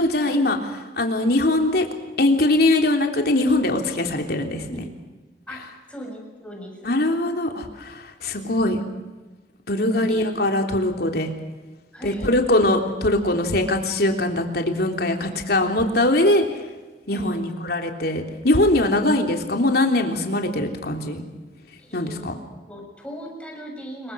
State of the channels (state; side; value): normal; both; correlation 0.32